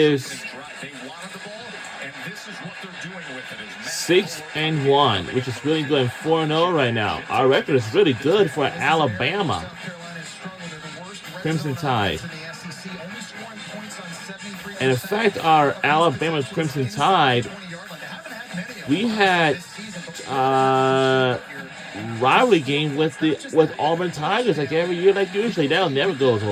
6-1, which is really good, and 4-0 right now. Our record is really good for Alabama. Crimson Tide. And in fact, our Alabama Crimson Tide, we had rivalry game with Auburn Tigers like every year, like usually. That never goes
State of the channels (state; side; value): identical; both; correlation 1.00